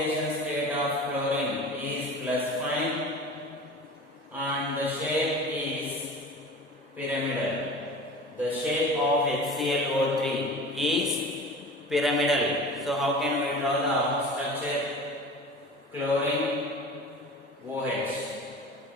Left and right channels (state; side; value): normal; both; correlation 0.37